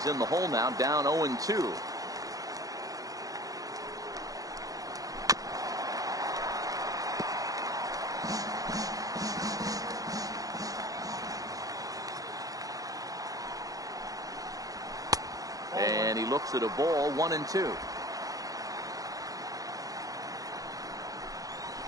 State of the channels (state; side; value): late; left; 0.17 ms